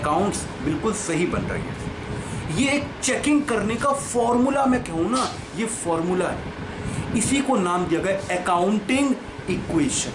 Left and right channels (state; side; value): identical; both; correlation 1.00